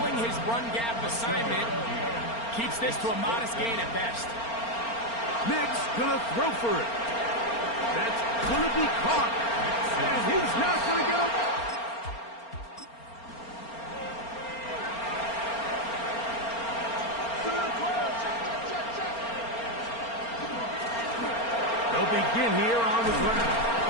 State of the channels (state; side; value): late; right; 4.3 ms